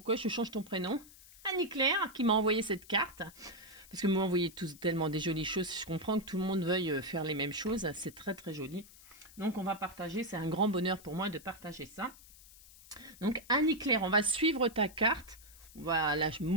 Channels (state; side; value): noise; left; hiss, 21 dB below the sound